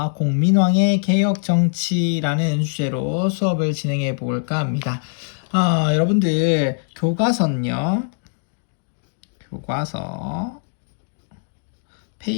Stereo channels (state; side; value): silent; right; digital silence